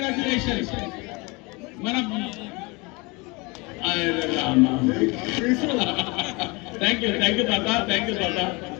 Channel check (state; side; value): quieter; right; 26.8 dB